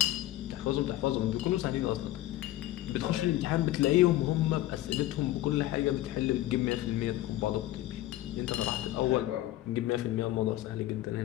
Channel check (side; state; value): right; quieter; 15.1 dB